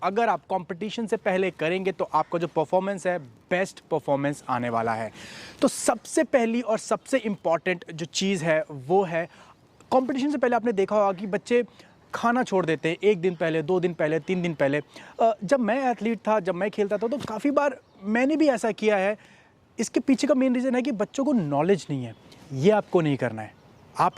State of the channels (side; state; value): both; identical; correlation 1.00